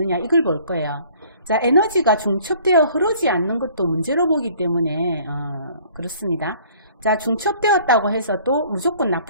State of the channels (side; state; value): both; inverted; correlation -0.55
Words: 이걸 볼 거예요. 자, 에너지가 중첩되어 흐르지 않는 것도 문제로 보기 때문에 그렇습니다. 자, 중첩되었다고 해서 또 무조건